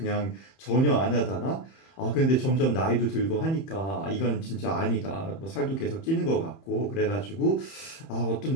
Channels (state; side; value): late; right; 31 ms